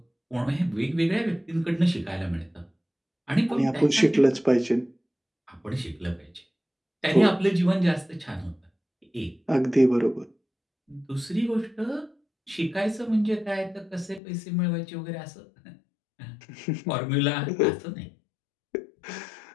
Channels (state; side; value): drops out; right; at 14.2 s